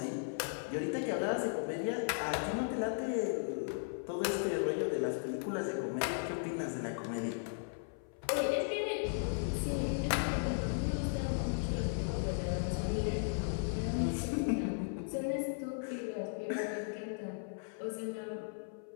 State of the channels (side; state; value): right; silent; 53 dB below the other